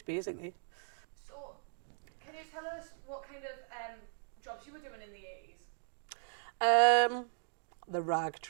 basically. So, can you tell us what kind of jobs you were doing in the 80s? The rag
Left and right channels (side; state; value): left; silent; digital silence